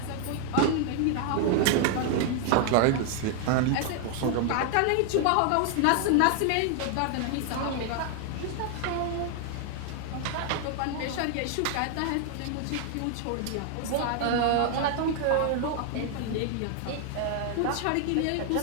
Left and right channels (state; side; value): different; both; correlation 0.00